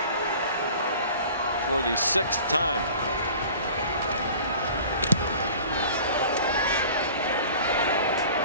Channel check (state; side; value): inverted; both; correlation -0.44